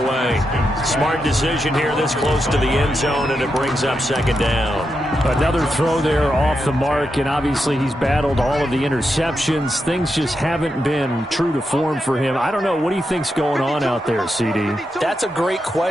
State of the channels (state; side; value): normal; both; correlation 0.86